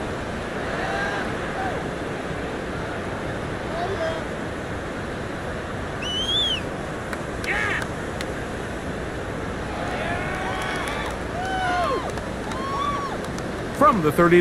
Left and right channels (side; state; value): both; identical; correlation 1.00